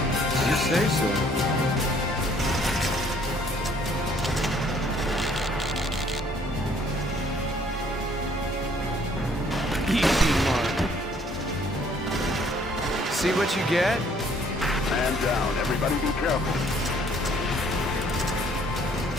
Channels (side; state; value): both; normal; correlation 0.61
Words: You say so. Easy mark. See what you get? Man down. Everybody be careful.